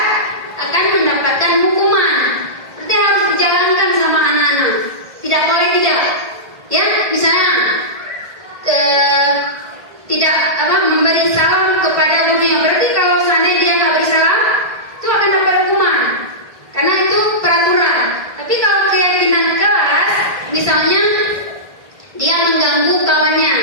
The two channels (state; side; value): late; left; 1.7 ms